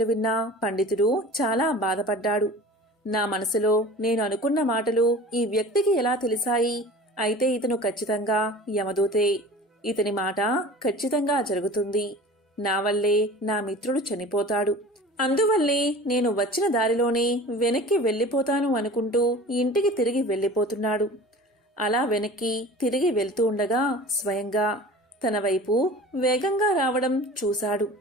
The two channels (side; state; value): both; normal; correlation 0.40